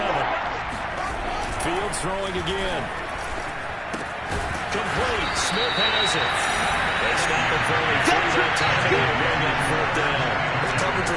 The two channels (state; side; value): identical; both; correlation 1.00